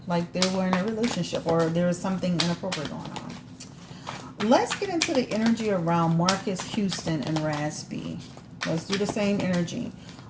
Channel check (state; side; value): identical; both; correlation 1.00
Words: Like they were in a relationship or there is something inappropriate going on. Let's get into the energy around Marcus Houston and Raz B. Let's do the same energy.